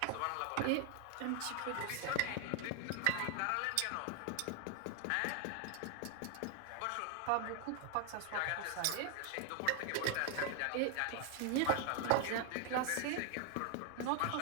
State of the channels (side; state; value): both; different; correlation 0.00